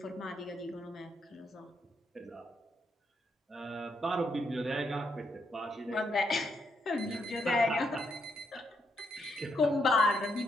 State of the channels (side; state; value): both; normal; correlation 0.78